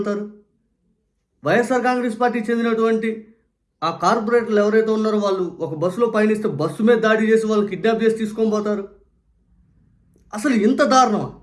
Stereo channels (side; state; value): both; identical; correlation 1.00